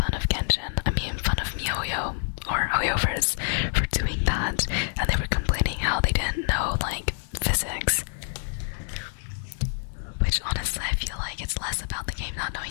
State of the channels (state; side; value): silent; right; digital silence